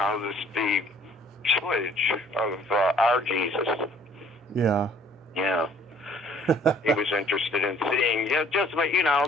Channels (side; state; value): both; normal; correlation 0.56